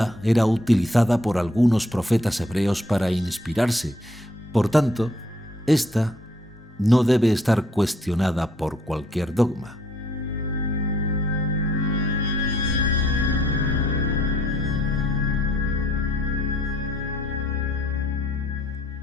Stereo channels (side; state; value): both; normal; correlation 0.65